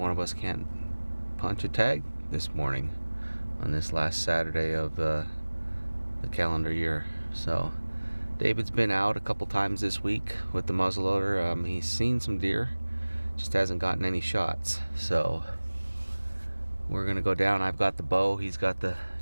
of us can't punch a tag this morning on this last Saturday of the calendar year. So David's been out a couple times this week with the muzzleloader. He's seen some deer, just hasn't gotten any shots. So we're gonna go down. I've got the bow. He's got the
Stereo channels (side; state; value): both; inverted; correlation -1.00